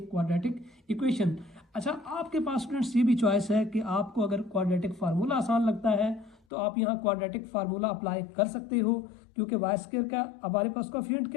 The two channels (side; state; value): right; drops out; at 6.4 s